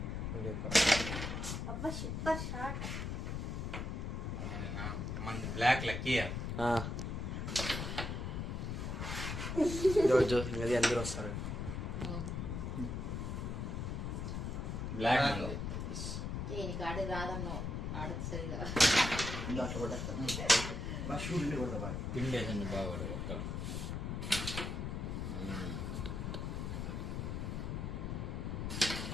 మంది బ్లాక్ లక్కీ రోజు అది అందరూ వస్తారు. బ్లాక్ పిండేసండి బాగా ఒక్క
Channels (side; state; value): left; noise; rumble, 3 dB below the sound